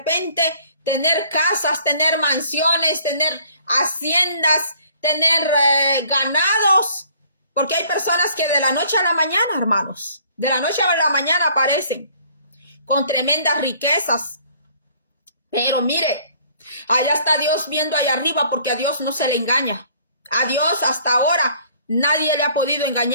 tener casas, tener mansiones, tener haciendas, tener ganados, porque hay personas que de la noche a la mañana, hermanos, de la noche a la mañana aparecen con tremendas riquezas. Pero mire, allá está Dios viendo allá arriba, porque a Dios no se le engaña. A Dios hasta ahora nadie le ha podido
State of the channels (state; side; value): inverted; both; correlation -0.57